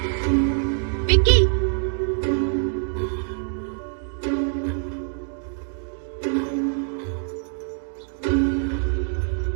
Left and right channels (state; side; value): silent; left; digital silence